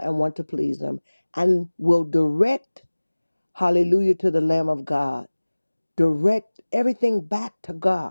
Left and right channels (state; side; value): inverted; both; correlation -1.00